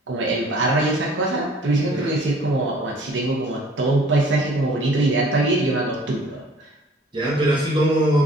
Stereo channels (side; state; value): both; normal; correlation 0.53